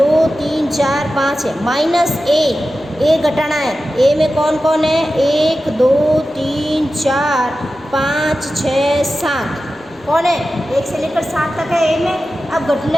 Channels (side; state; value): left; noise; rumble, 29 dB below the sound